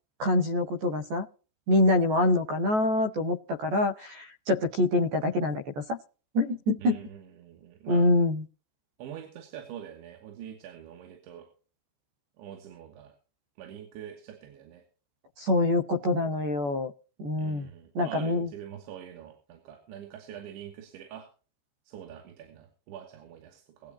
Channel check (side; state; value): left; late; 14 ms